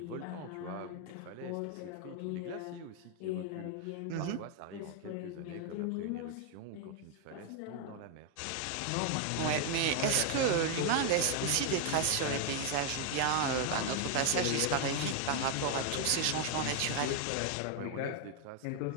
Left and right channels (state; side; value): different; both; correlation 0.01